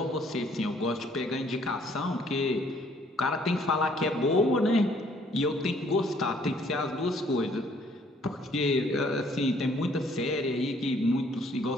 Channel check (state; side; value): normal; both; correlation 0.63